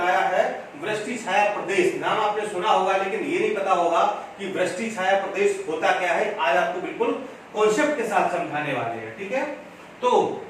है वृष्टि छाया प्रदेश, नाम आपने सुना होगा, लेकिन ये नहीं पता होगा कि वृष्टि छाया प्रदेश होता क्या है। आज आपको बिल्कुल कॉन्सेप्ट के साथ समझाने वाले हैं, ठीक है। तो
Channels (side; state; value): both; identical; correlation 1.00